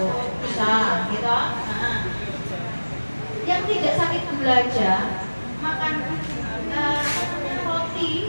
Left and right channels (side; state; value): both; inverted; correlation -1.00